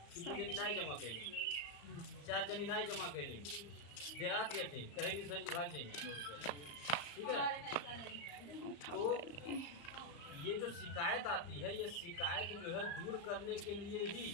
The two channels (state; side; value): late; right; 35 ms